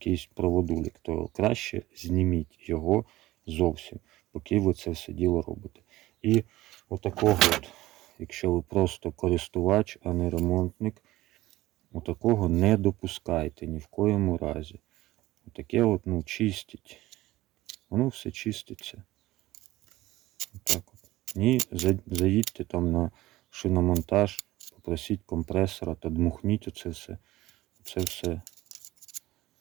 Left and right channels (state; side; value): quieter; left; 17.0 dB